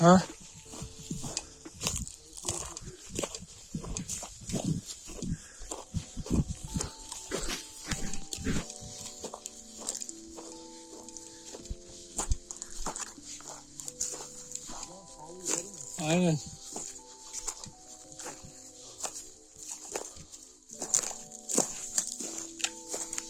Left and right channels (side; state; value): both; identical; correlation 1.00